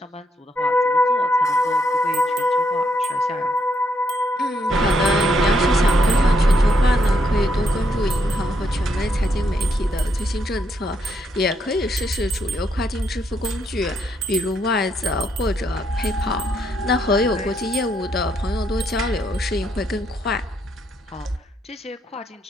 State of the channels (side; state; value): both; normal; correlation 0.75